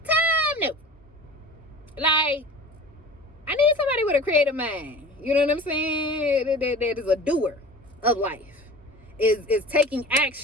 time, no. Like, I need somebody with a creative mind. You know what I'm saying? That is a doer of life. Is taking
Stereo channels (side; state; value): both; normal; correlation 0.39